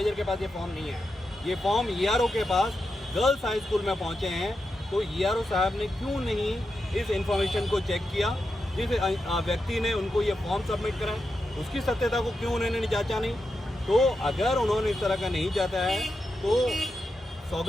के पास ये फॉर्म नहीं है, ये फॉर्म ईआरओ के पास गर्ल्स हाई स्कूल में पहुंचे हैं, तो ईआरओ साहब ने क्यों नहीं इस इंफॉर्मेशन को चेक किया? जिस व्यक्ति ने उनको ये फॉर्म सबमिट करा उसकी सत्यता को क्यों उन्होंने जांचा नहीं? तो अगर उन्होंने इस तरह का नहीं जाता है तो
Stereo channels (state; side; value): normal; both; correlation 0.88